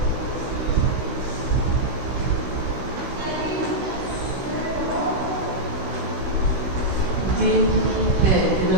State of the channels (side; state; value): left; late; 16 ms